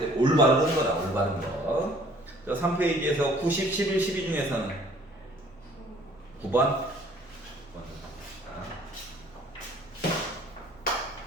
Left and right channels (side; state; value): both; normal; correlation 0.55